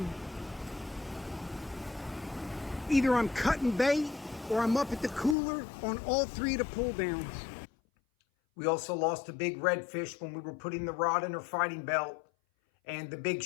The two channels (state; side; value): drops out; right; at 5.4 s